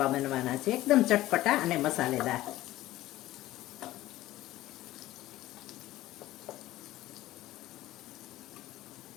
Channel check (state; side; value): quieter; right; 15.9 dB